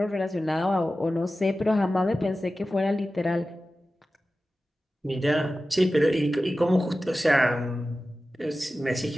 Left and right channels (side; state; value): both; normal; correlation 0.94